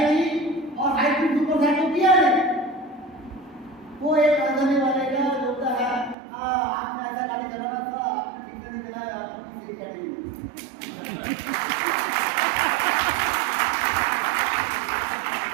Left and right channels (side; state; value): left; drops out; at 6.2 s